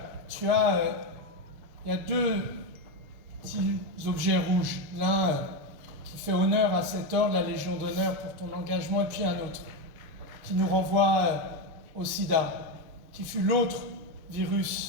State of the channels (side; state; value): left; late; 6.6 ms